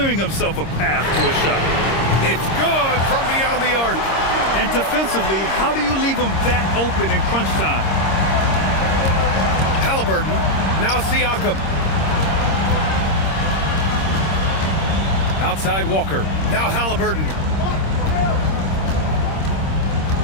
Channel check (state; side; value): late; right; 26 ms